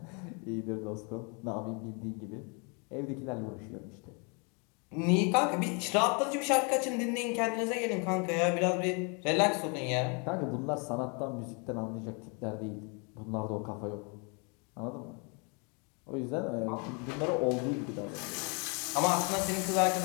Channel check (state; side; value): quieter; right; 34.3 dB